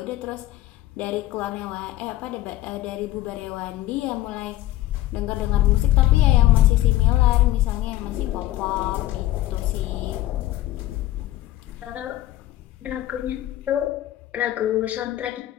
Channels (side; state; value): right; quieter; 14.8 dB